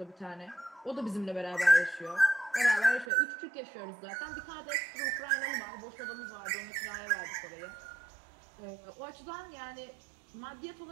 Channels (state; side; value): drops out; left; at 3.1 s